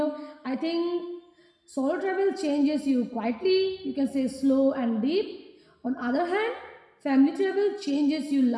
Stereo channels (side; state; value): both; identical; correlation 1.00